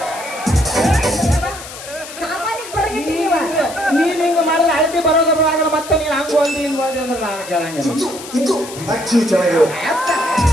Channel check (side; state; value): left; noise; hiss, 13 dB below the sound